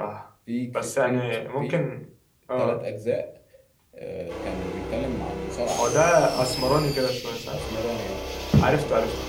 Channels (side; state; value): both; identical; correlation 1.00